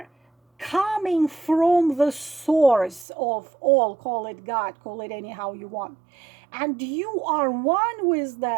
coming from the source of all, call it God, call it anyhow you want, and you are one with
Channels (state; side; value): drops out; left; at 3.1 s